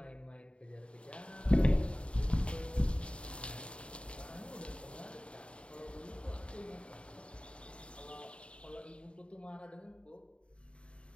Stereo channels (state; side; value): late; right; 0.057 ms